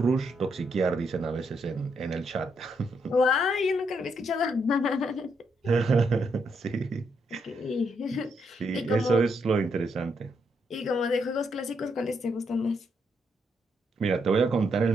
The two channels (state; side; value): normal; both; correlation 0.77